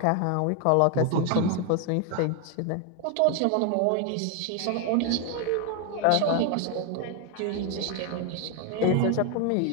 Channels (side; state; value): both; different; correlation 0.01